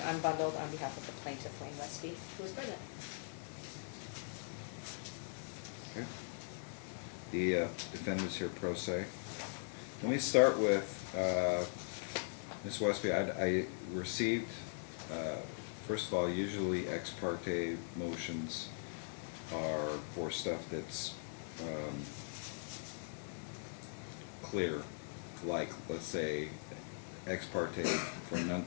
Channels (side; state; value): right; silent; 51 dB below the other